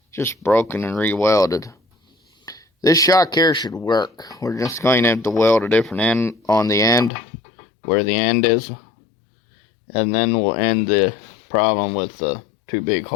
just broken and re-welded. This shock here should work. We're just going to have to weld a different end on the end, where the end is. And then we'll end the problem with the too big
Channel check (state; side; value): drops out; right; at 7.1 s